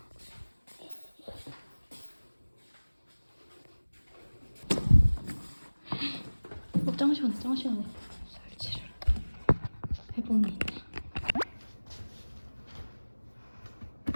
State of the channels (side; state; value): both; inverted; correlation -1.00